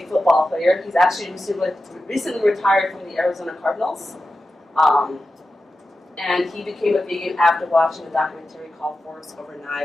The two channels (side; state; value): both; normal; correlation 0.92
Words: football player. He's actually recently retired from the Arizona Cardinals. And he became a vegan after watching a documentary called Forks Over